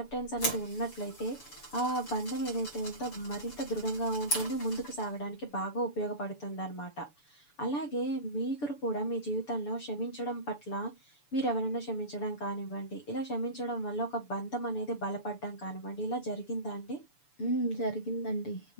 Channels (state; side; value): late; right; 6.9 ms